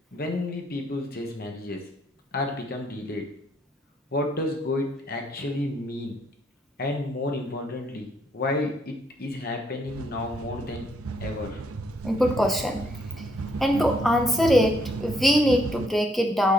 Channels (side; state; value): both; normal; correlation 0.71